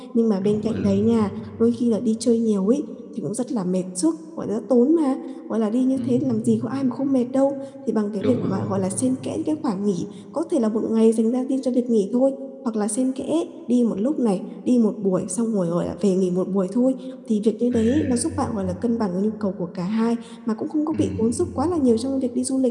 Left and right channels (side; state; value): both; identical; correlation 1.00